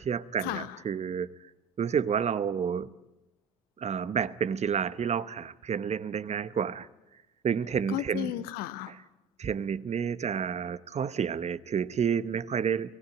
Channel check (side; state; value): left; quieter; 5.9 dB